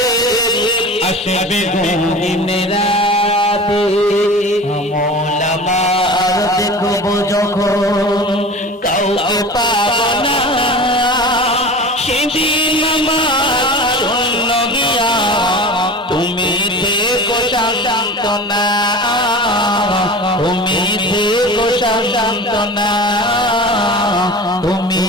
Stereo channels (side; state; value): both; normal; correlation 0.35